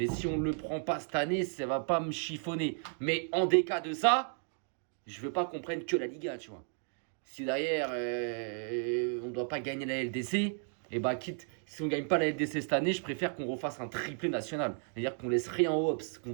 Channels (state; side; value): silent; left; 55 dB below the other